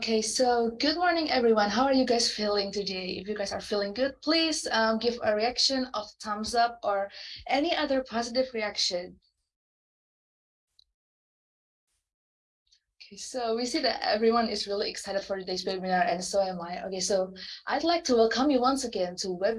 so good morning, everyone. How are you guys feeling today? If you guys are feeling good, please give a reaction of thumbs up or any other positive reaction. Okay, so we see that everyone is really excited for today's webinar, and so am I. Okay, so I'd like to welcome you once again to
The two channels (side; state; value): both; identical; correlation 1.00